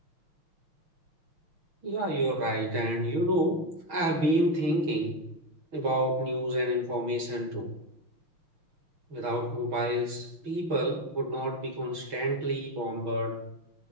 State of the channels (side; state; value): left; late; 6.2 ms